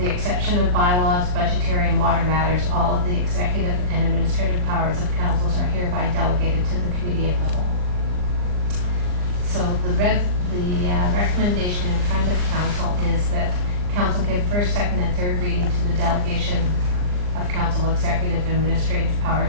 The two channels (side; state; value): left; late; 39 ms